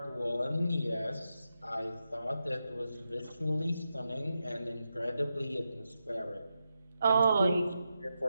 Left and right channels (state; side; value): inverted; both; correlation -0.88